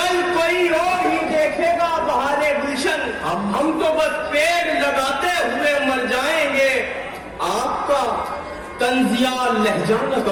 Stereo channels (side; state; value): both; identical; correlation 1.00